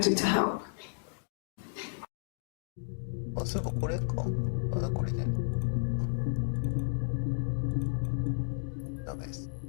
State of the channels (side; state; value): right; silent; digital silence